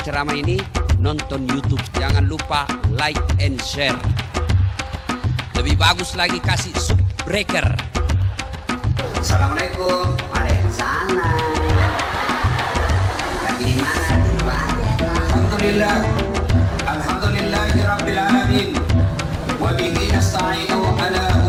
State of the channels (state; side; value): identical; both; correlation 1.00